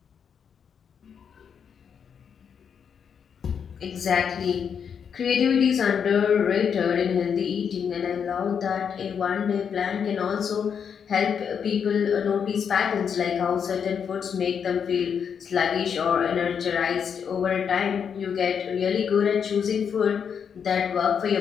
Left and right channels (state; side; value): quieter; right; 7.2 dB